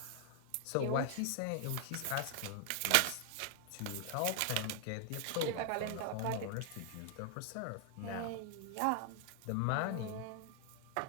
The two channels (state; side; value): different; both; correlation 0.00